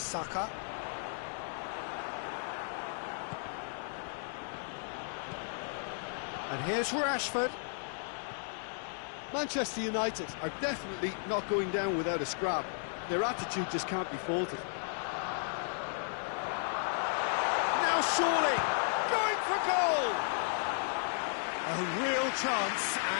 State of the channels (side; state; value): right; silent; digital silence